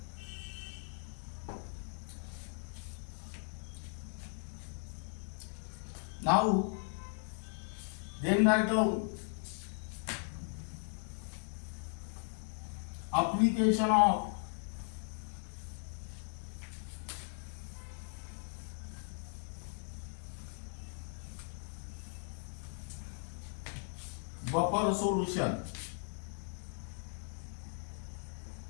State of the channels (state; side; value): silent; right; 52 dB below the other